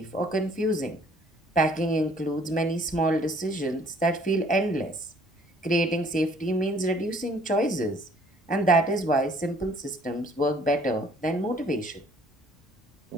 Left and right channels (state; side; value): normal; both; correlation 0.59